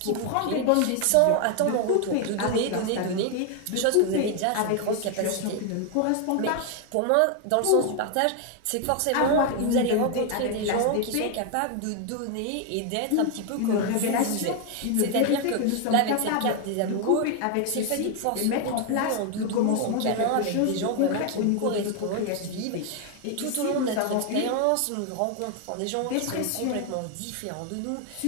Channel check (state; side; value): different; both; correlation 0.01